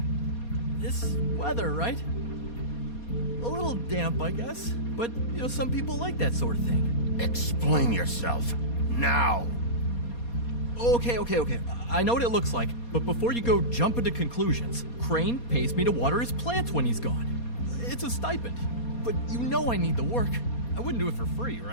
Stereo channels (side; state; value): right; late; 4.2 ms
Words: This weather, right? A little damp, I guess, but, some people like that sort of thing. Explain yourself. Now! Okay. I know what it looks like, but before you go jumping to conclusions, Crane pays me to water his plants when he's gone. It's a stipend, but I need the work. I wouldn't do it for free,